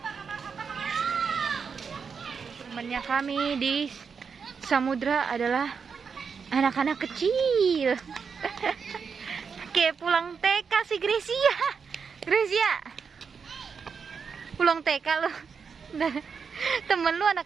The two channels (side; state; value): left; quieter; 5.9 dB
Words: Temannya kami di samudra adalah anak-anak kecil. Kayak pulang TK si Gracia. Gracia, pulang TK lo. Temen lu